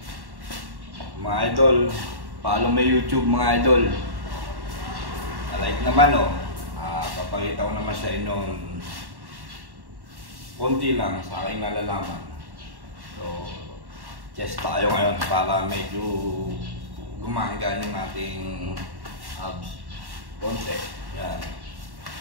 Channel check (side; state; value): left; late; 1.1 ms